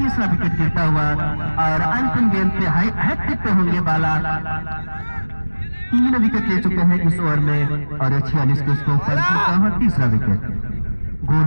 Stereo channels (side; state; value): both; inverted; correlation -1.00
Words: विकेट गिरता हुआ और अंतिम गेंद पे हैट्रिक पे होंगे बाला। 3 विकेट ले चुके हैं इस ओवर में और 46 के स्कोर पर तीसरा विकेट।